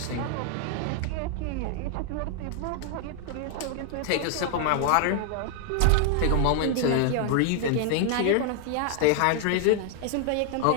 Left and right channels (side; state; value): both; different; correlation 0.00